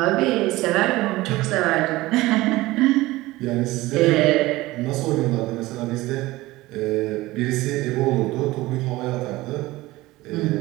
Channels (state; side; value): quieter; left; 18.9 dB